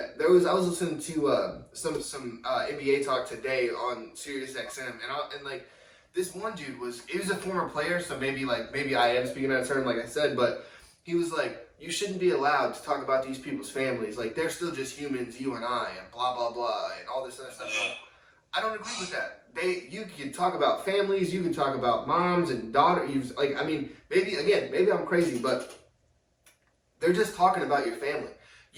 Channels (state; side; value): identical; both; correlation 1.00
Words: I was listening to some NBA talk today on Sirius XM, and like, this one dude he was a former player, so maybe I am speaking out of turn, like I said, but he was like, you shouldn't be allowed to talk about these people's families. Like, they're still just humans, you and I, and blah blah blah, and all this other stuff. I don't agree with that. You can talk about families, you can talk about moms and daughters. Like, I mean, maybe I'm crazy, but they're just talking about your family.